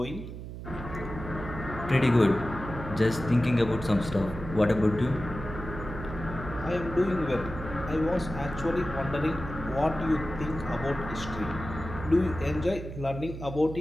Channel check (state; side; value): noise; right; hum, 10 dB below the sound